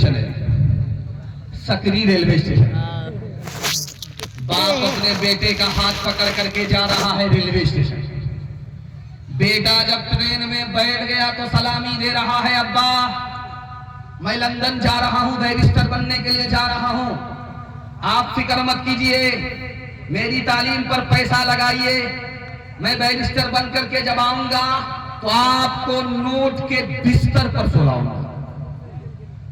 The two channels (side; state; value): both; identical; correlation 1.00